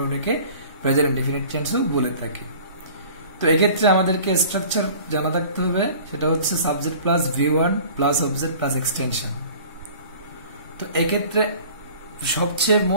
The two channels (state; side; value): inverted; both; correlation -0.46